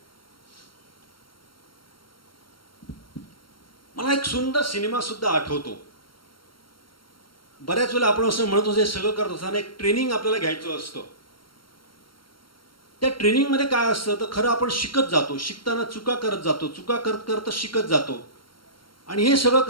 मला एक सुंदर सिनेमा सुद्धा आठवतो. बऱ्याच वेळेला आपण असं म्हणतो, हे सगळं करत असताना एक ट्रेनिंग आपल्याला घ्यायचं असतं. त्या ट्रेनिंगमध्ये काय असतं तर खरं आपण शिकत जातो, शिकताना चुका करत जातो, चुका करत करत शिकत जातो. आणि हे सगळं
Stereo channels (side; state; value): right; late; 0.73 ms